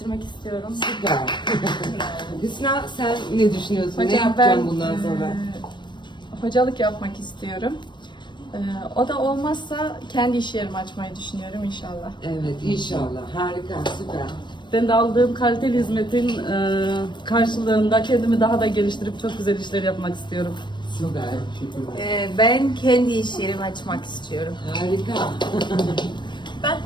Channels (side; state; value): right; late; 0.22 ms